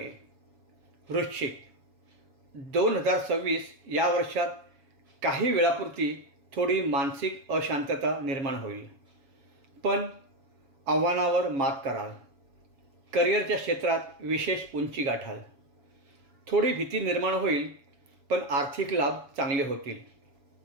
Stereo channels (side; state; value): left; late; 7.2 ms